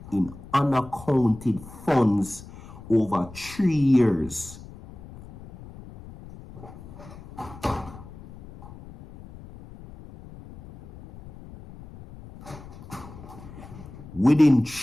in unaccounted funds over 3 years. Within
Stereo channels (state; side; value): noise; left; rumble, 17 dB below the sound